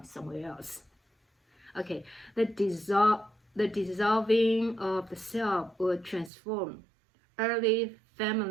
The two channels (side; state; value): left; drops out; at 6.3 s